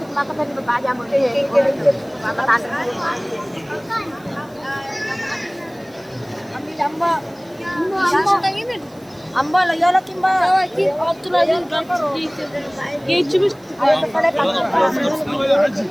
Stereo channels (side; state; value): right; noise; hiss, 29 dB below the sound